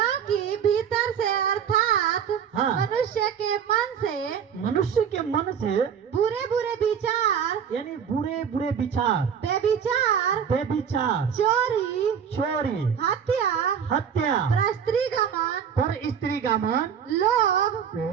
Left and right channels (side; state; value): left; quieter; 7.8 dB